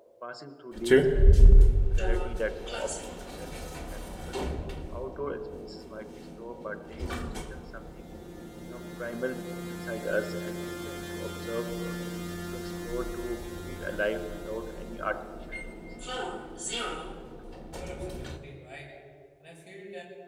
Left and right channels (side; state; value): both; identical; correlation 1.00